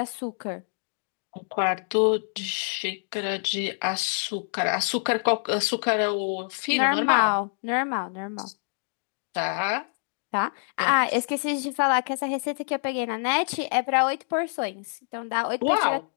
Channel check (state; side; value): silent; right; 60 dB below the other